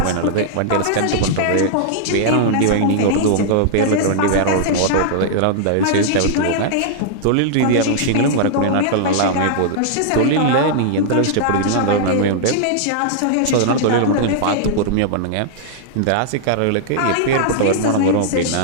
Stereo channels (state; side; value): different; both; correlation -0.01